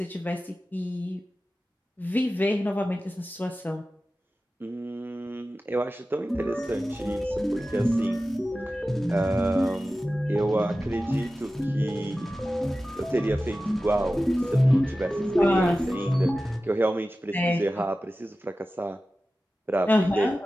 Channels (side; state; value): both; normal; correlation 0.95